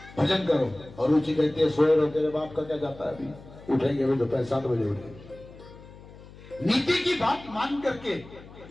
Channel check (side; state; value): left; noise; hum, 19 dB below the sound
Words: भजन करो, और रुचि कहती है सोए रहो, तेरे बाप का क्या जाता है, अभी उठेंगे अभी दोपहर 7 बजे उठेंगे। नीति की बात मान करके